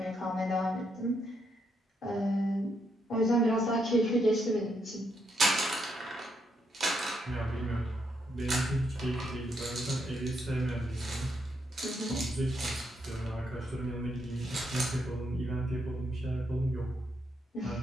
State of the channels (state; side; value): normal; both; correlation 0.78